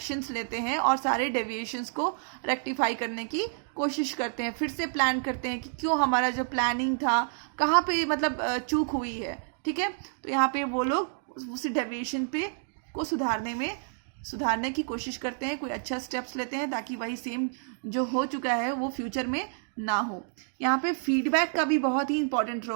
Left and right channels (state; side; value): silent; left; digital silence